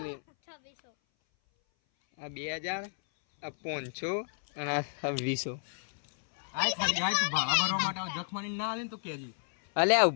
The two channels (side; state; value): right; silent; 57 dB below the other